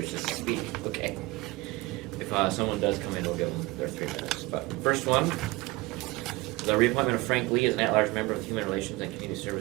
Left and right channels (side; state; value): left; quieter; 21.7 dB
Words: to speak? Okay. If someone does come in, we'll give them their 3 minutes. But first one, the reappointment of Frank Lee as an at-large member of the Human Relations and Community